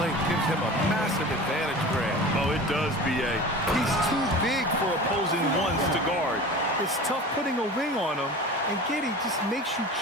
gives him a massive advantage, Grant. Oh, it does, B.A. He's too big for opposing ones to guard. It's tough putting a wing on him, and Giddey just makes you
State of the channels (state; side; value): normal; both; correlation 0.36